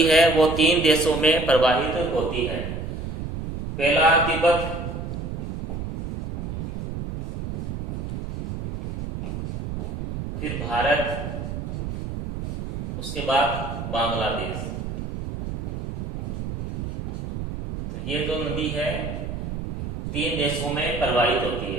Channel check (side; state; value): right; noise; rumble, 4 dB below the sound